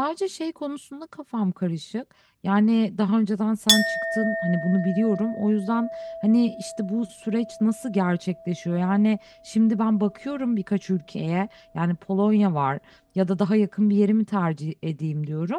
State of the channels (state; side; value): identical; both; correlation 1.00